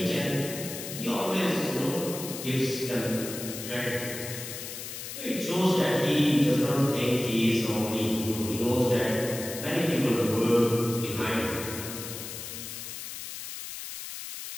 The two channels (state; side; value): noise; left; hiss, 8 dB below the sound